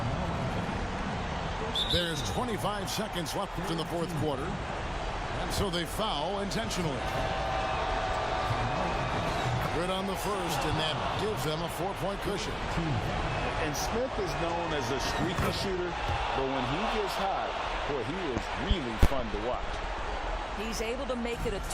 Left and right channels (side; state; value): both; identical; correlation 1.00